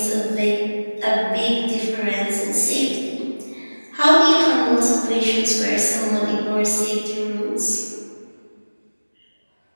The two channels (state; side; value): inverted; both; correlation -1.00